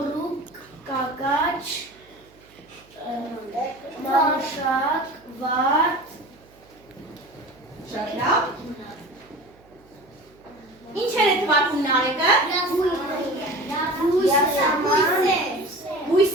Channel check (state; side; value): noise; right; hum, 29 dB below the sound